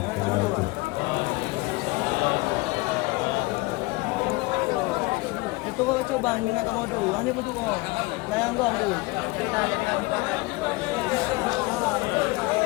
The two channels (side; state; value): right; quieter; 23.7 dB